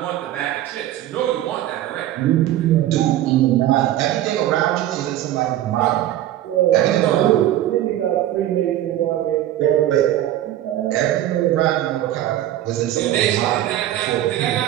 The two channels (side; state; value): left; quieter; 13.1 dB